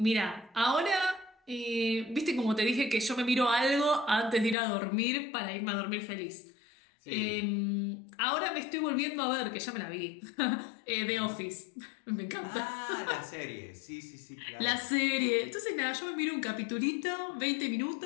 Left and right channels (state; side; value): drops out; right; at 4.5 s